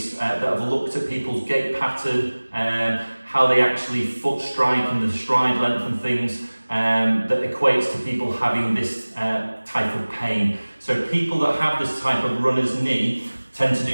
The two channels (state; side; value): inverted; both; correlation -1.00